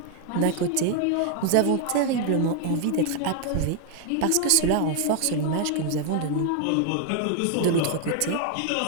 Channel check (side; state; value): both; different; correlation 0.00